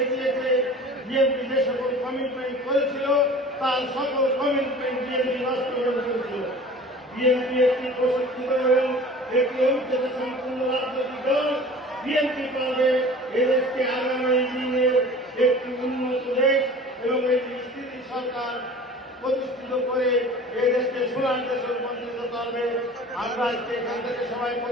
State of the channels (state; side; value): normal; both; correlation 0.42